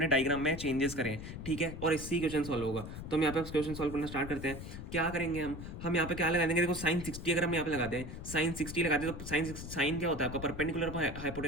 डायग्राम में चेंजेस करें, ठीक है। और इससे क्वेश्चन सॉल्व होगा। तो हम यहाँ पे क्वेश्चन सॉल्व करना स्टार्ट करते हैं। क्या करेंगे हम यहाँ पे क्या लगा देंगे, देखो साइन 60 अगर हम यहाँ पे लगाते हैं, साइन 60 लगाते हैं, तो साइन क्या होता है आपका, परपेंडिकुलर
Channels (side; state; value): left; noise; rumble, 9 dB below the sound